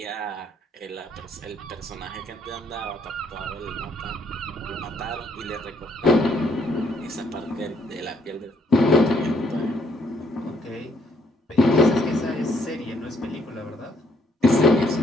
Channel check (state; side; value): normal; both; correlation 0.69